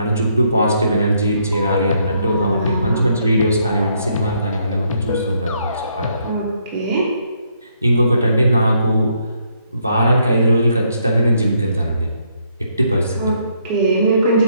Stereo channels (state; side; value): inverted; both; correlation -0.72